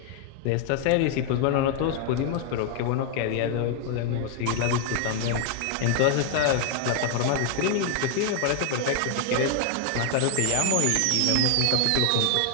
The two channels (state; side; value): different; both; correlation 0.00